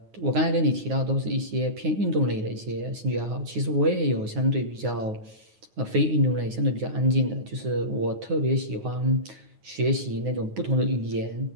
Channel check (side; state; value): left; late; 9.5 ms